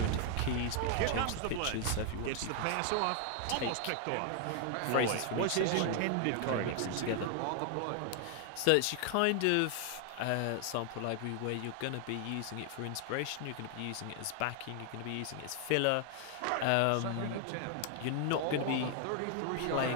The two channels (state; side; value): different; both; correlation 0.00